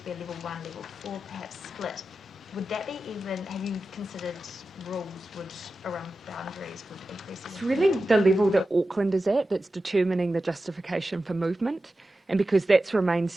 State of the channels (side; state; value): both; normal; correlation 0.93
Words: be a level 1, level 4 perhaps split, would that be even, have you considered rules around boundaries would increase? It's really the level that Auckland is at that's determining the justification for movement. And because that's remained